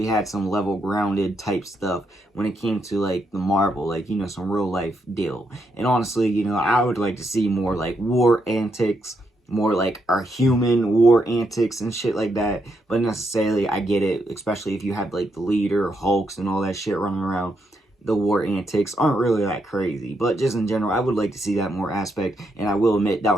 had some level grounded type stuff when it came to like the Marvel, like, you know, some real life deal. And honestly, you know, I would like to see more like war antics, more like our human war antics and shit like that. But necessarily, I get it, especially if you have like the leader, Hulks, and all that shit running around. The war antics aren't really that crazy, but just in general, I would like to see that more aspect, and I will admit that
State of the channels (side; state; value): both; normal; correlation 0.79